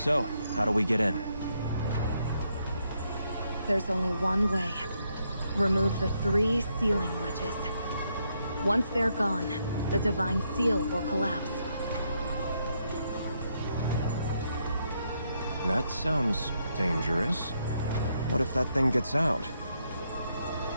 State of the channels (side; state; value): both; inverted; correlation -0.77